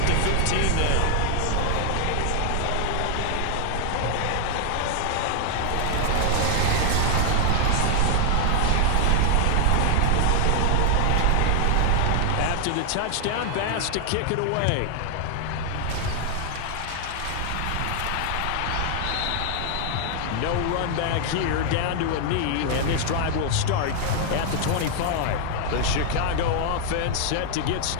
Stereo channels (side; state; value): both; different; correlation 0.00